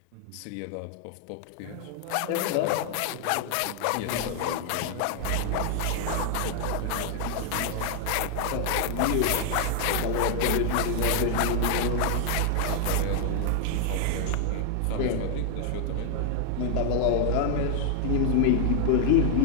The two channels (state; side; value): different; both; correlation 0.00